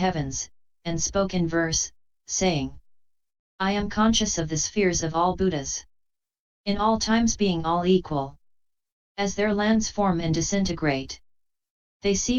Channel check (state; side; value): identical; both; correlation 1.00